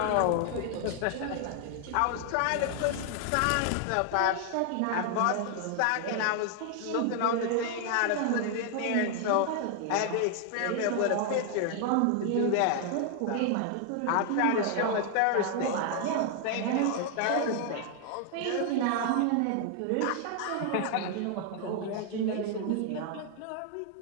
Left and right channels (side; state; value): both; different; correlation 0.00